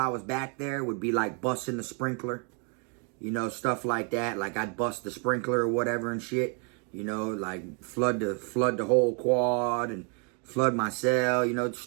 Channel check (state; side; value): quieter; left; 38.6 dB